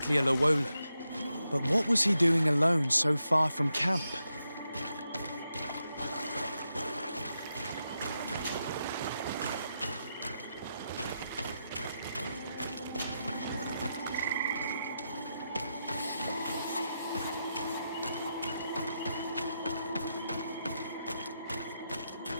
a Llewellyn. But what was he doing alone so far from camp?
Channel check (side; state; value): both; inverted; correlation -0.86